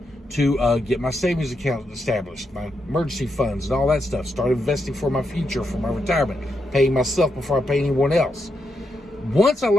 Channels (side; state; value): both; normal; correlation 0.83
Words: to get my savings account established, my emergency funds and all that stuff. Start investing for my future, for my retirement, paying myself before I pay anyone else. Once I